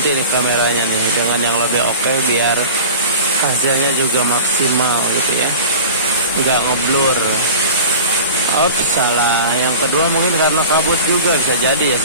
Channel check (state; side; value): inverted; both; correlation -0.37